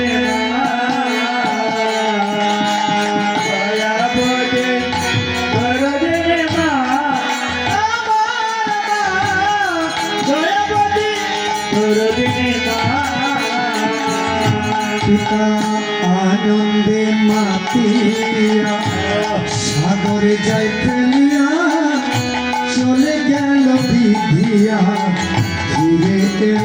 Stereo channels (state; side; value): identical; both; correlation 1.00